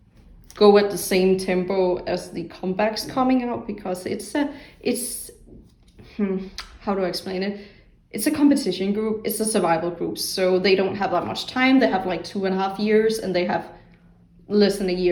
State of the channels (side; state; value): both; identical; correlation 1.00